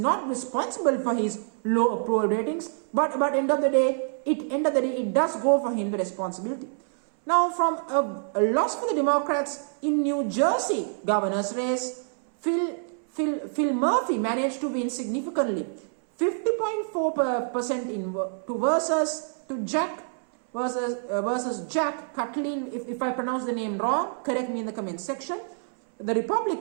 responsible for his low approval ratings. But end of the day, it does go for him the responsibility. Now, from a loss for the Democrats in New Jersey governor's race, Phil Murphy managed to win significantly, 50.4% versus Jack Catlin. If I pronounce the name wrong, correct me in the comment section. The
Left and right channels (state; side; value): silent; left; 60 dB below the other